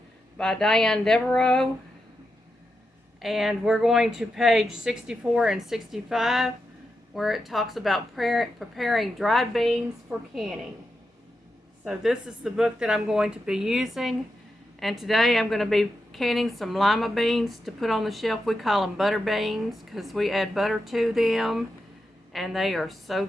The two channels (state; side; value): normal; both; correlation 0.87